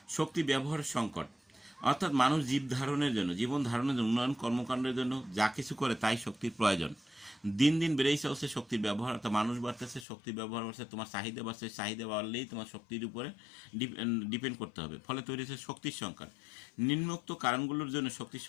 শক্তি ব্যবহারের সংকট, অর্থাৎ মানুষ জীবন ধারণের জন্য, উন্নয়ন কর্মকাণ্ডের জন্য যা কিছু করে তাই শক্তির প্রয়োজন। দিন দিন বেড়েই চলছে শক্তির ব্যবহার, অর্থাৎ মানুষ বাড়তেছে, শক্তির ব্যবহার বাড়ছে, তোমার চাহিদা বাড়ছে, চাহিদা বাড়লেই তোমার শক্তির উপরে ডিপেন্ড করতে হবে, ফলে তৈরি হচ্ছে শক্তির সংকট। নিম্নোক্ত কারণগুলোর জন্য শক্তির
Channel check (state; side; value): drops out; right; at 10.1 s